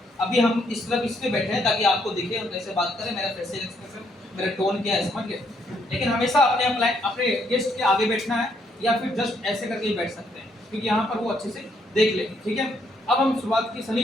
अभी हम इस तरफ इसमें बैठे हैं ताकि आपको दिखे हम कैसे बात करें, मेरा फेशियल एक्सप्रेशन, मेरा टोन क्या है, समझ गए? लेकिन हमेशा अपने गेस्ट के आगे बैठना है या फिर जस्ट ऐसे करके ही बैठ सकते हैं, क्योंकि यहाँ पर वो अच्छे से देख लेंगे। ठीक है, अब हम शुरुआत की। सनी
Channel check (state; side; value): normal; both; correlation 0.72